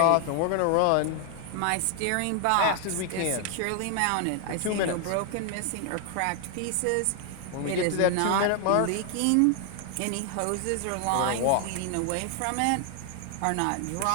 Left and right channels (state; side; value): different; both; correlation 0.00